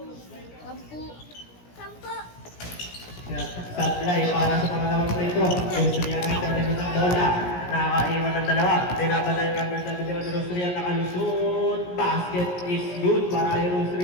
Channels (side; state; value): right; late; 17 ms